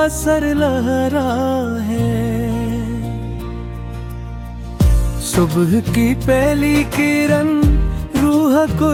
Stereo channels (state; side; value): identical; both; correlation 1.00